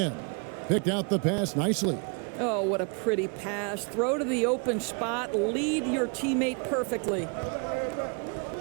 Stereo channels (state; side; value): quieter; left; 36.6 dB